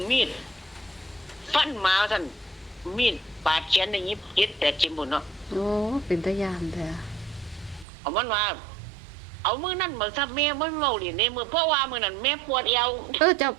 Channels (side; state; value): left; drops out; at 7.9 s